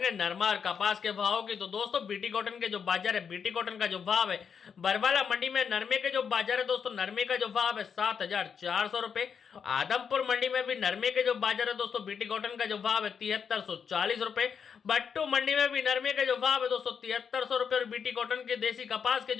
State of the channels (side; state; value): right; quieter; 6.8 dB